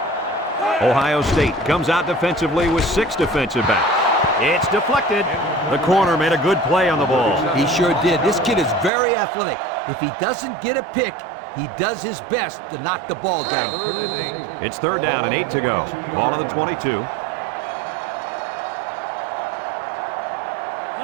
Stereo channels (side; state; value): left; drops out; at 8.9 s